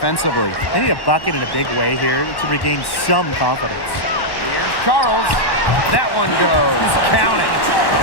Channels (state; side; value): late; right; 1.1 ms